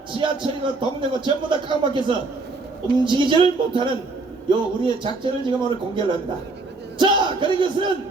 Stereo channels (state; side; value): quieter; left; 3.6 dB